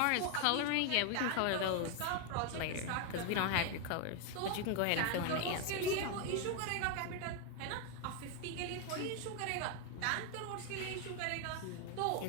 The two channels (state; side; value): different; both; correlation 0.01